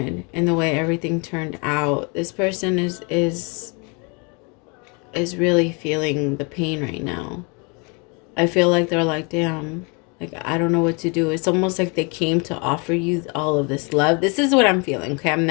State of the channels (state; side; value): quieter; right; 32.1 dB